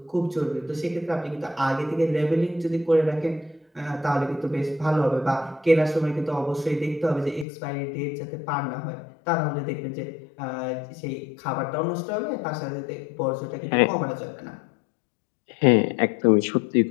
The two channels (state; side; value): drops out; right; at 7.5 s